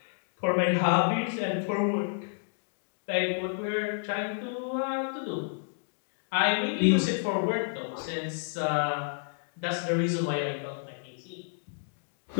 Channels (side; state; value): right; silent; digital silence